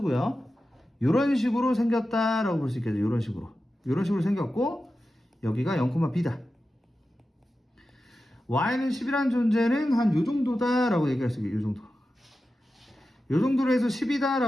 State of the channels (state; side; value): normal; both; correlation 0.92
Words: 이런 식으로 생겼다라고 볼 수 있겠죠. 이런 식으로 생겼고, 여기가 0,b다. y는 10이라는 존재는 한 요 정도다라고 얘기할 수 있겠죠. 요 정도로 해서 10이다